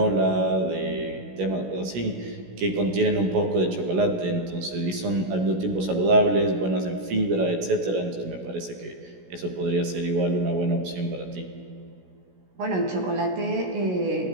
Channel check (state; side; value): late; left; 16 ms